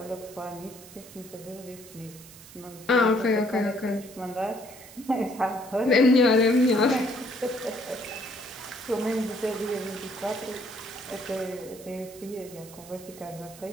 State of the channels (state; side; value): noise; right; hiss, 19 dB below the sound